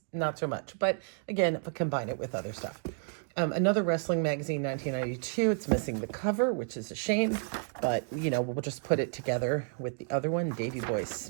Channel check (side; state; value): left; silent; 55 dB below the other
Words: not so much. But again, if I combine it with other stuff. Another wrestling magazine, 1992. It's missing the cover, which is a shame. But, you know, we'll just put it together with the other one, Davey Boy